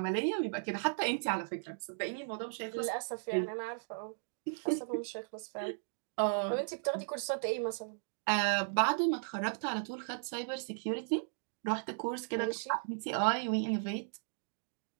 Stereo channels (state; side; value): silent; left; digital silence